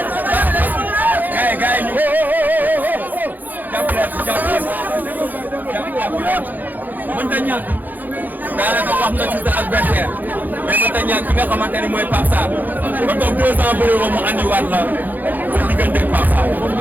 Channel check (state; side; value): late; left; 0.084 ms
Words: mënta ñàkk daanaka wax nga ci sa adversaire mais mënta ñàkk ki nga xamante ni mooy Pape Sarr ba toog 2 ans bëri ko mu andiwaat la sa diggante ak Pape Sarr.